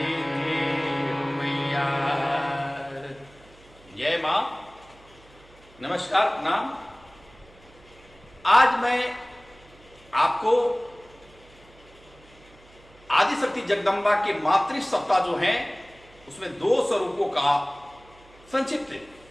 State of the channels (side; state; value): right; noise; hum, 26 dB below the sound